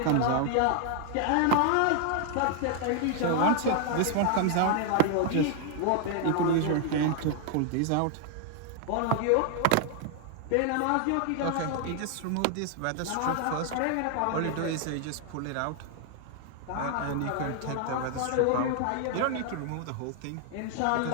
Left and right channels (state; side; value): different; both; correlation 0.00